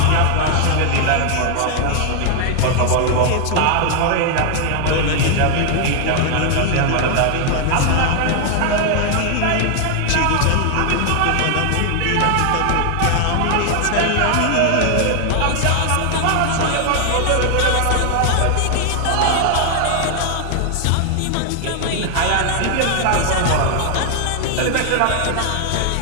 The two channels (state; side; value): different; both; correlation 0.00